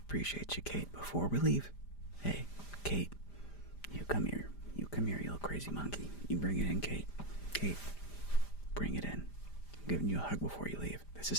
you, Kate. Before we leave, hey, Kate, you come here, you little crazy monkey. You bring it in, Kate. Kate, bring it in. I'm giving you a hug before you leave. This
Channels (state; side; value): late; right; 5.0 ms